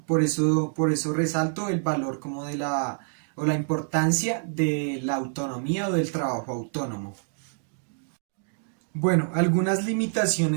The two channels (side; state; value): left; silent; digital silence